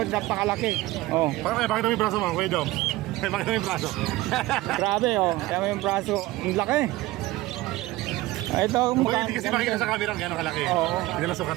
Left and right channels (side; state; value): left; quieter; 18.1 dB